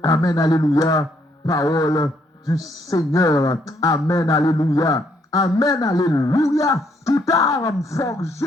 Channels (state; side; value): normal; both; correlation 0.71